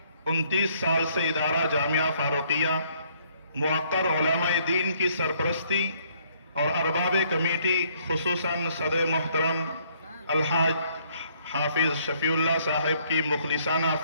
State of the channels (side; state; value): both; inverted; correlation -0.66